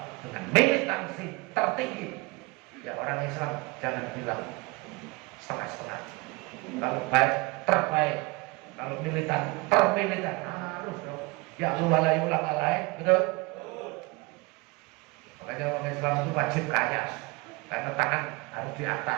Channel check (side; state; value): left; quieter; 24.5 dB